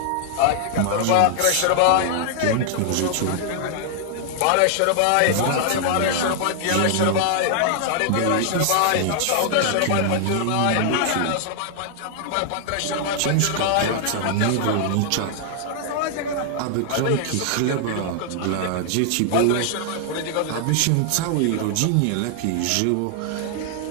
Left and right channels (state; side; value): different; both; correlation 0.00